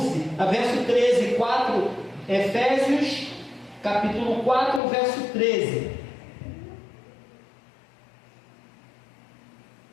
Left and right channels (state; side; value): drops out; right; at 4.8 s